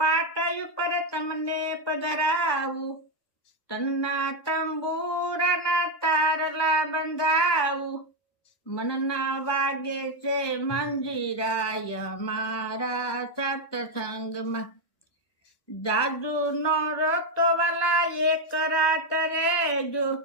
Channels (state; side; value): late; right; 1.2 ms